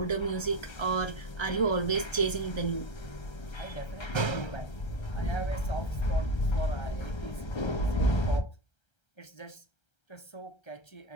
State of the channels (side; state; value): right; late; 1.3 ms